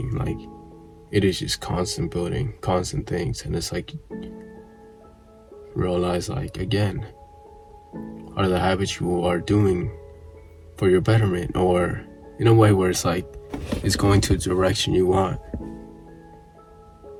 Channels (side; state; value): both; identical; correlation 1.00